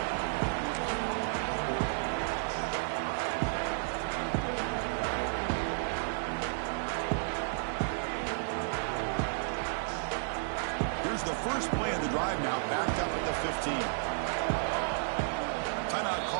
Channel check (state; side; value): silent; left; digital silence